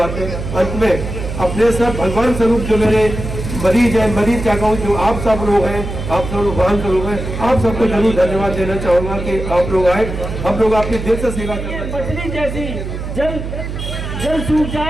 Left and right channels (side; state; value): right; noise; hum, 6 dB below the sound